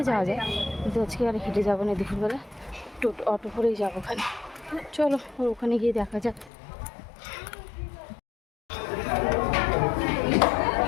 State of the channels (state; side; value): drops out; right; at 6.5 s